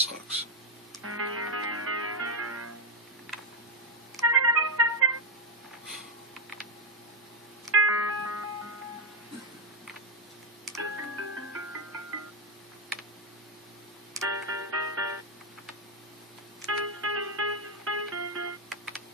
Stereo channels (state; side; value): normal; both; correlation 0.04